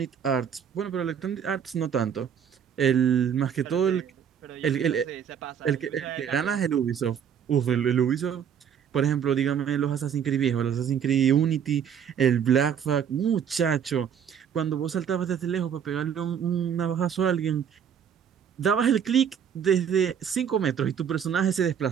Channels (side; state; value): left; quieter; 8.1 dB